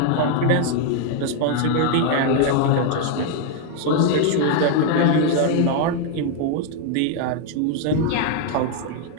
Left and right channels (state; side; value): different; both; correlation 0.00